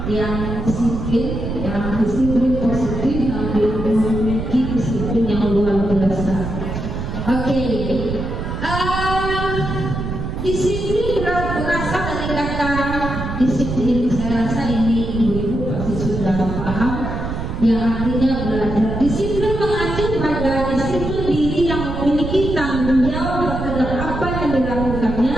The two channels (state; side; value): noise; right; rumble, 5 dB below the sound